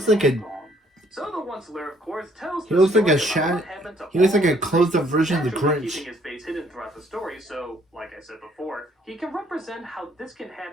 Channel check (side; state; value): both; normal; correlation 0.64